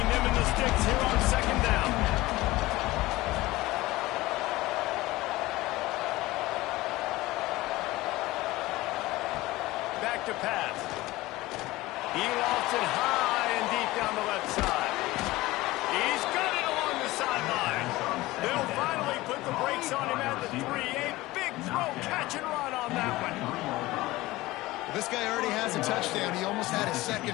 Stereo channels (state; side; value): quieter; right; 18.9 dB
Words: them and the sticks here on 2nd down. Back to pass. He lofts it high and deep down the left side. He's got it along the sideline. They'll finally put the brakes on him at the 3. A big throw, catch and run on that one. This guy already has a touchdown. He almost had a